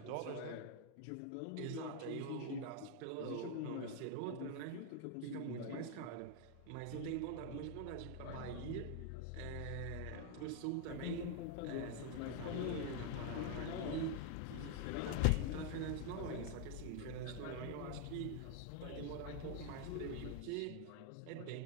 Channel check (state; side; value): different; both; correlation 0.00